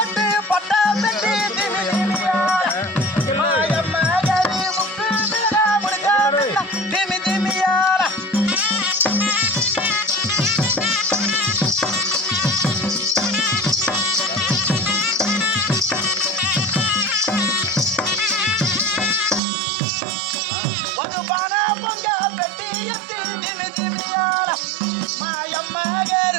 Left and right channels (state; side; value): drops out; left; at 19.4 s